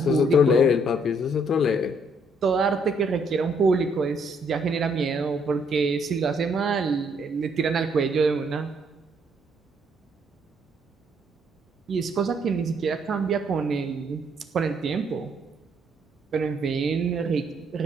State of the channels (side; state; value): both; normal; correlation 0.69